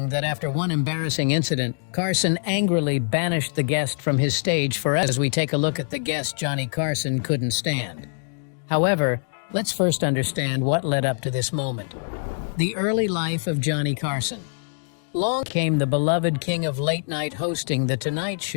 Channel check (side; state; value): right; silent; digital silence